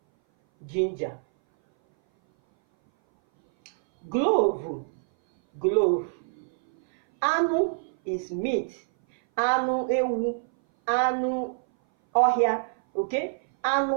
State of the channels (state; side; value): silent; left; 59 dB below the other